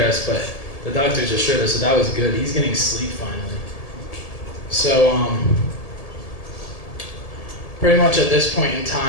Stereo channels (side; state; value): right; late; 1.7 ms